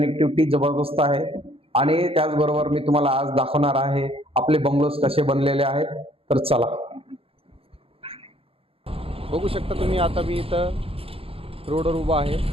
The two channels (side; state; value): left; late; 0.27 ms